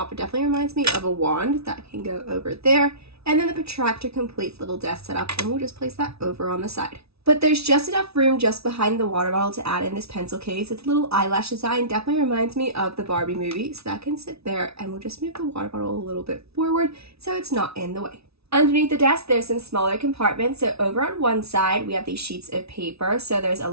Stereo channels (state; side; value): late; left; 0.78 ms